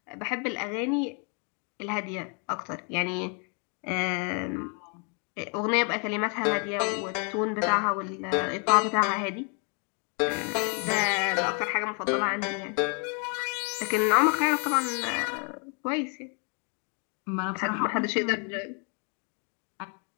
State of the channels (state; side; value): quieter; right; 37.5 dB